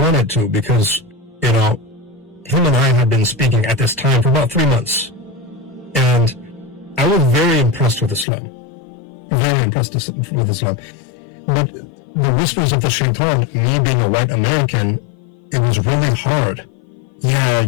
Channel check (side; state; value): right; drops out; at 8.2 s